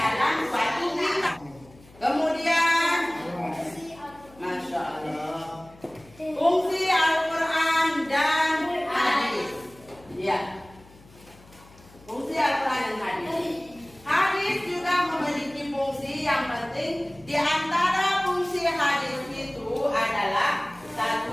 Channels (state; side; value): noise; left; hum, 24 dB below the sound